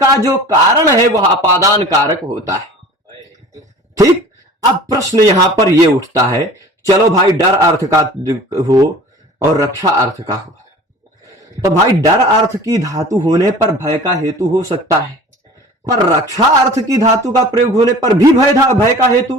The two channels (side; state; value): both; normal; correlation 0.43